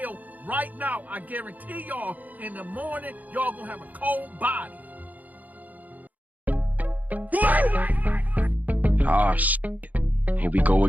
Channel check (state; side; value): late; left; 0.079 ms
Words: right now, I guarantee y'all in the morning, y'all gonna have a cold body. Ah, shit. Here we go